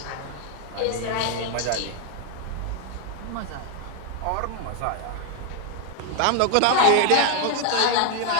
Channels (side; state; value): both; different; correlation 0.01